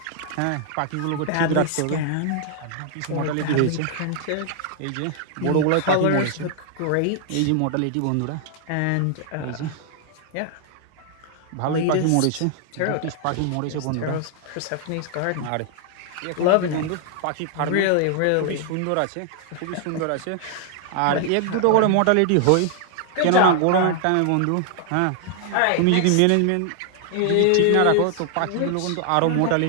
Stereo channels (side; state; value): both; different; correlation 0.00